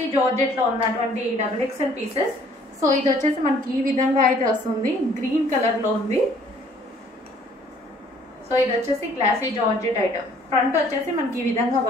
georgette లో ఉన్నటువంటి డబుల్ ఎక్స్ఎల్ పీసెస్. సో ఇది వచ్చేసి మనకి ఈ విధంగా అయితే వస్తుంది, గ్రీన్ కలర్ లో ఉంది. సో ఇది వచ్చేసి గ్లాసీ జార్జెట్ ఐటమ్. ఫ్రంట్ వచ్చేసి మనకి ఈ విధంగా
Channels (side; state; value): both; normal; correlation 0.59